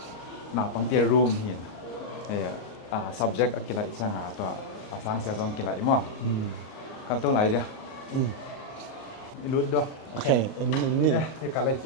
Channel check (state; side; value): late; right; 38 ms